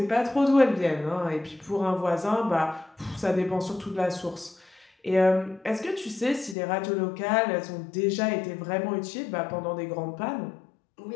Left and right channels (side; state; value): right; drops out; at 6.6 s